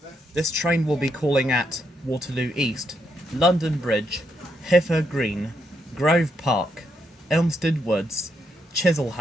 This train will be calling at Waterloo East, London Bridge, Hither Green, Grove Park, Elmstead Woods,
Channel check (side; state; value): both; normal; correlation 0.79